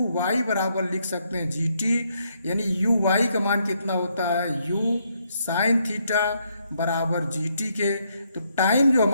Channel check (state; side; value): inverted; both; correlation -0.75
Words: वाई बराबर लिख सकते हैं जी टी, यानी यू वाई का मान कितना होता है? यू साइन थीटा बराबर जी टी के। तो टाइम जो